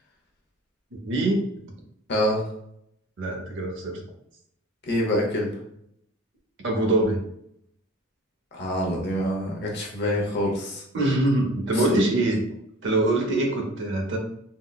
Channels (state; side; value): normal; both; correlation 0.42